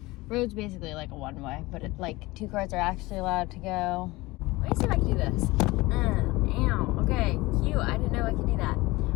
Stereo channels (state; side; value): quieter; right; 21.0 dB